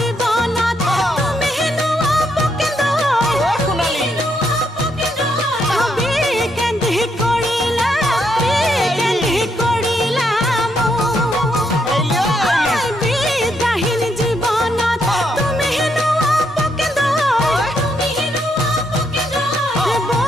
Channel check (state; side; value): normal; both; correlation 0.77